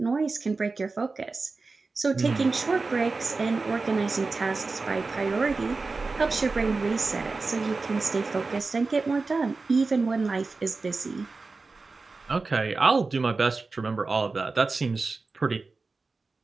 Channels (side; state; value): left; quieter; 3.9 dB